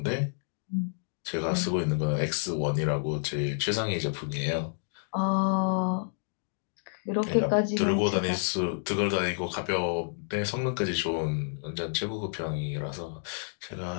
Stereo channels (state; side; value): silent; right; digital silence